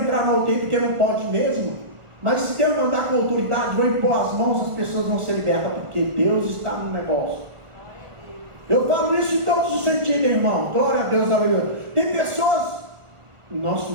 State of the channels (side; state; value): left; late; 1.4 ms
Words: na UTI porque não pode mesmo. Mas se Deus mandar com autoridade, vou impor as mãos, as pessoas vão ser libertas, porque Deus está no negócio. Eu falo isso em todos os sentidos, irmão. Glória a Deus, aleluia. Tem pessoas, no nosso